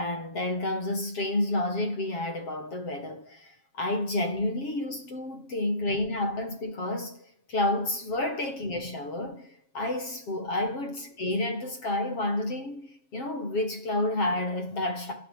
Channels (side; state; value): right; late; 7.3 ms